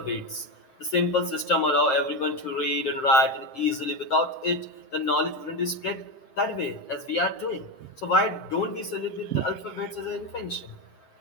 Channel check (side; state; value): right; late; 7.7 ms